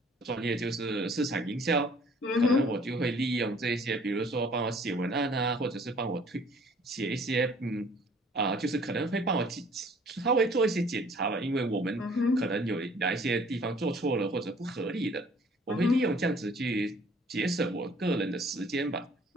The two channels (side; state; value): both; normal; correlation 0.55